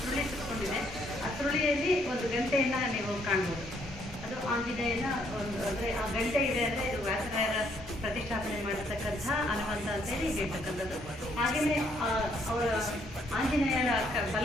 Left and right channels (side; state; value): both; normal; correlation 0.69